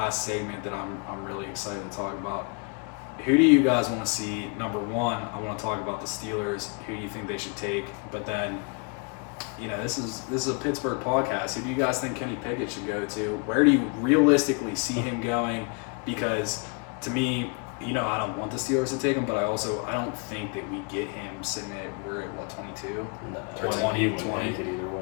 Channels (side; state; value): right; quieter; 34.0 dB